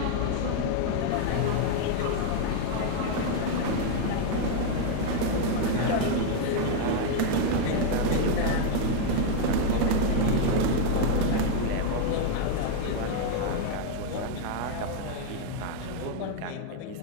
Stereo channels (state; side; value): different; both; correlation 0.01